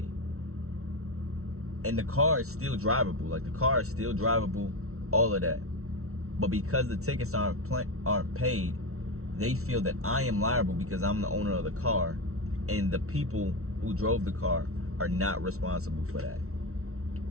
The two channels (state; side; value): late; left; 0.63 ms